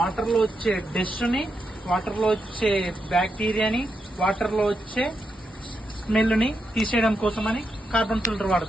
లో వచ్చే డస్ట్ ని, వాటర్ లో వచ్చే బ్యాక్టీరియాని, వాటర్ లో వచ్చే స్మెల్ ని తీసేయడం కోసం అని కార్బన్ ఫిల్టర్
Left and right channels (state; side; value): normal; both; correlation 0.84